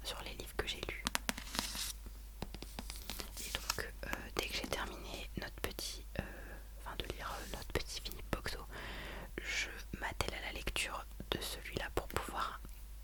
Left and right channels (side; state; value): both; identical; correlation 1.00